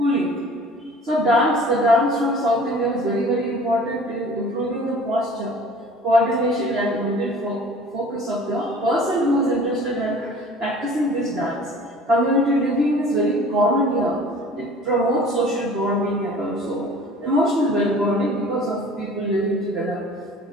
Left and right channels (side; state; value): both; normal; correlation 0.47